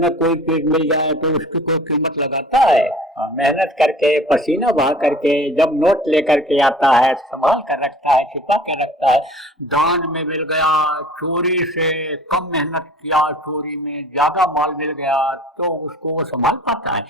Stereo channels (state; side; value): normal; both; correlation 0.47